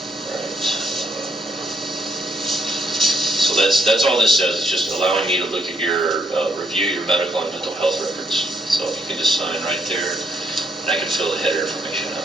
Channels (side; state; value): both; normal; correlation 0.73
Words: right. So that's all this says. It's just allowing me to look at your review your medical and mental health records. So if you can just sign right there, and I can fill the header information